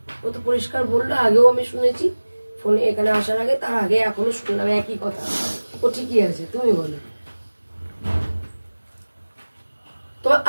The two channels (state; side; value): inverted; both; correlation -1.00